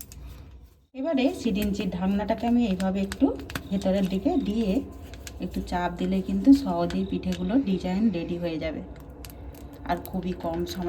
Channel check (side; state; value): both; identical; correlation 1.00